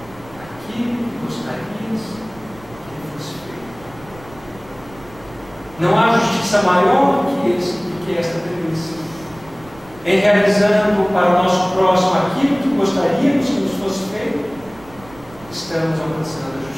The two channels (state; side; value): noise; right; rumble, 21 dB below the sound